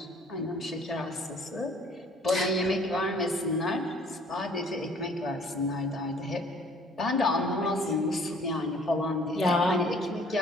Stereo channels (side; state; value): both; normal; correlation 0.55